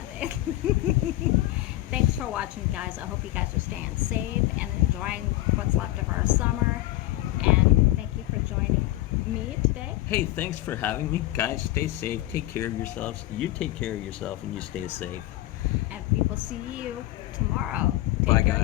Thanks for watching, guys. I hope you guys are staying safe and enjoying what's left of our summer. And thank you for joining me today. Hey, thanks for having me. Guys, stay safe. Take care of yourselves. You take care of yourself and you stay safe. And we will see you tomorrow. Take Bye,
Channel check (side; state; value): right; quieter; 16.8 dB